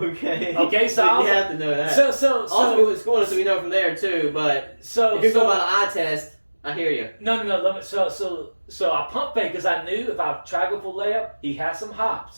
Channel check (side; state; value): both; inverted; correlation -1.00